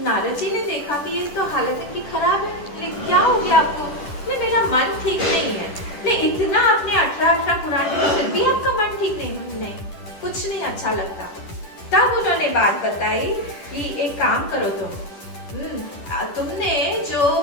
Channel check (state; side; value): late; right; 10 ms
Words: नारद जी ने देखा कि ये तो हालत इनकी खराब है, क्या हो गया आपको? मेरा मन ठीक नहीं है। नहीं इतना आपने 18 पुराण में फिर भी आपका मन ठीक नहीं, कुछ नहीं अच्छा लगता। तब उन्होंने बात बताई कि एक काम करो तुमने जो